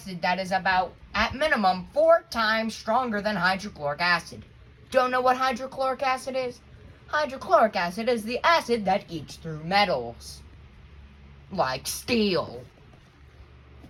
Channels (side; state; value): both; identical; correlation 1.00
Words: that is about, at minimum, 4 times stronger than hydrochloric acid. Don't know what hydrochloric acid is? Hydrochloric acid is the acid that eats through metals, like steel.